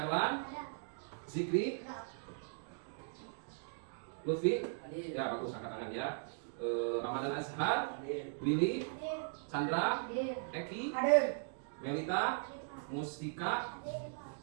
Zikri, Lutfi, ya bagus angkat tangan ya. Ramadan Azhar, Willy, Chandra, Eki, Melita, Mustika,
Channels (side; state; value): left; silent; digital silence